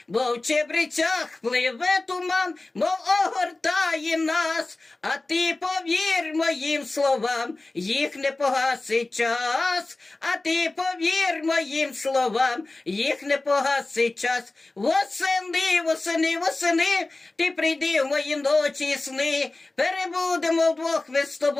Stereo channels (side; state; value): right; quieter; 3.1 dB